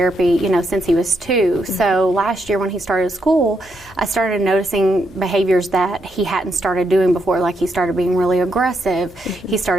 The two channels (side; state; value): right; noise; hum, 28 dB below the sound